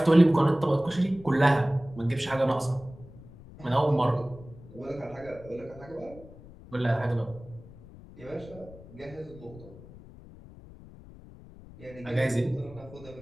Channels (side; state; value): left; noise; rumble, 19 dB below the sound